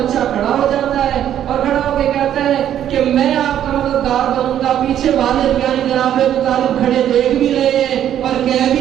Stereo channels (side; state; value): left; quieter; 10.6 dB